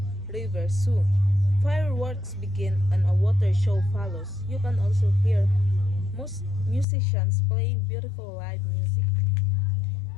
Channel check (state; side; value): drops out; right; at 6.9 s